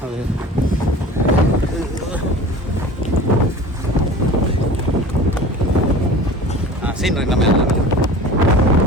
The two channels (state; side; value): normal; both; correlation 0.40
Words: அது சீன் நம்ம